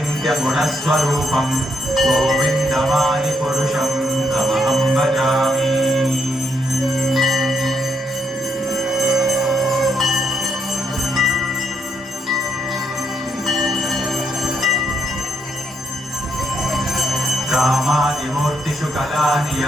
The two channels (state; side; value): normal; both; correlation 0.76